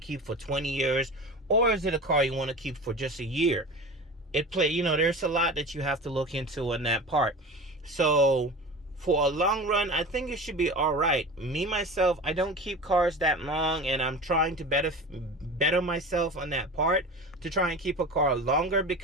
for 20 years? Or is it a car you want to keep for just a year? There's a lot that you have to look into in that part. So for a long run, I think it should be all right. Me, myself, I don't keep cars that long, and I'm trying to better myself on that part to try and keep a car longer,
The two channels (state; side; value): normal; both; correlation 0.33